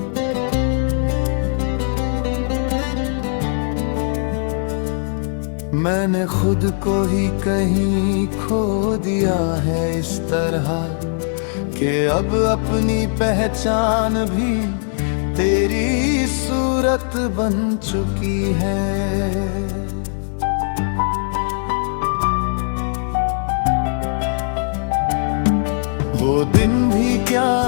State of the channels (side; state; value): right; silent; digital silence